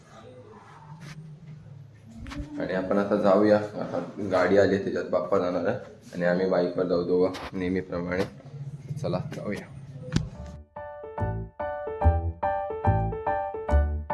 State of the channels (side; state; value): both; identical; correlation 1.00